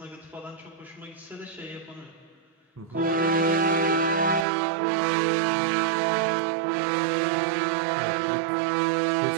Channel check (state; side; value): drops out; left; at 4.5 s